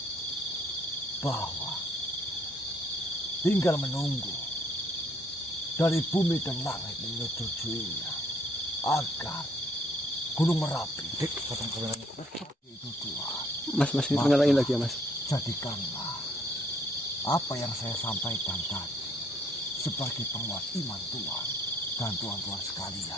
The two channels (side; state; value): both; normal; correlation 0.65